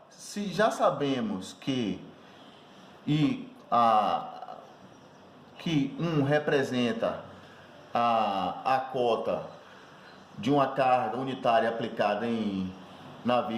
se já sabemos que que 1 representa a cota de uma carga unitária aplicada na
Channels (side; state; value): both; identical; correlation 1.00